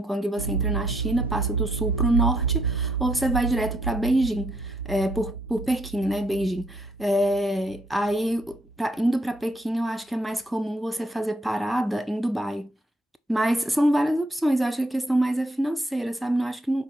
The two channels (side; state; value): both; normal; correlation 0.72